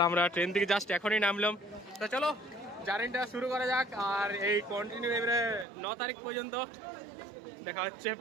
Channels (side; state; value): left; drops out; at 5.7 s